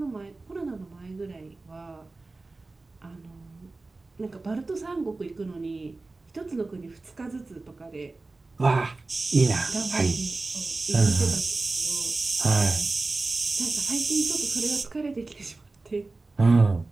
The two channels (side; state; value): left; quieter; 3.4 dB